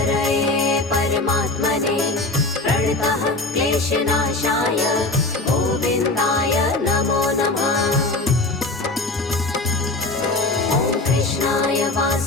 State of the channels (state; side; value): quieter; right; 3.0 dB